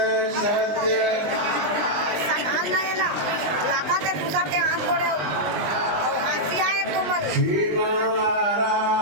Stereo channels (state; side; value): late; left; 19 ms